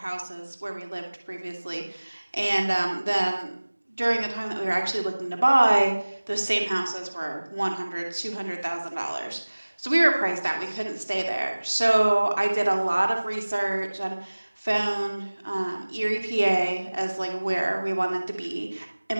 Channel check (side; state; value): both; inverted; correlation -1.00